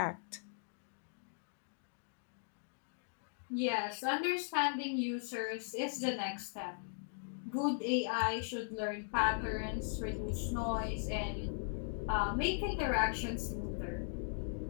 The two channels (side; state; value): right; silent; digital silence